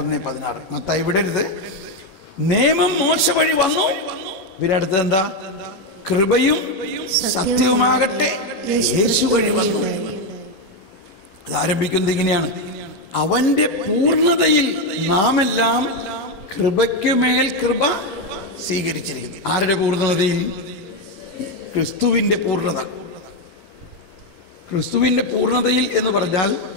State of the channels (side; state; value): right; late; 11 ms